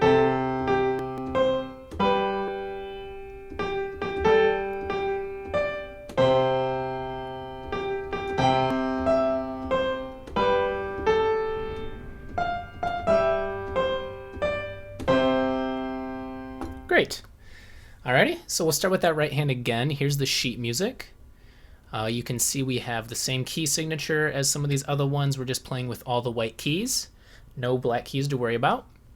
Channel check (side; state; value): both; identical; correlation 1.00